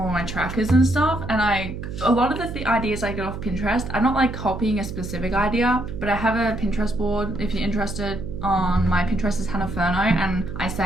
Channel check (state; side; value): noise; right; hum, 8 dB below the sound